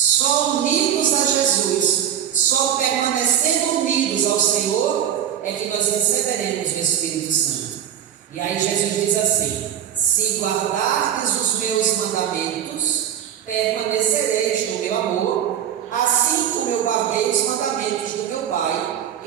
unidos a Jesus, só permanecendo unidos ao Senhor, é que nós receberemos o Espírito Santo. E aí Jesus diz assim: se guardardes os meus mandamentos, permanecereis no meu amor, assim como eu guardei os mandamentos do meu Pai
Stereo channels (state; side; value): quieter; left; 9.8 dB